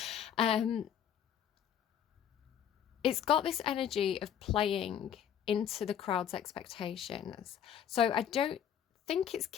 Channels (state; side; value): quieter; right; 9.2 dB